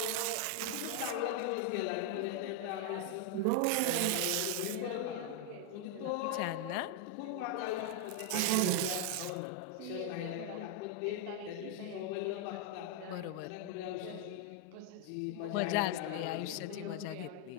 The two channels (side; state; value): both; different; correlation 0.00